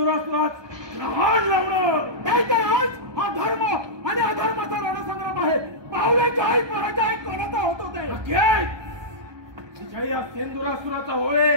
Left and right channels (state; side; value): late; left; 1.2 ms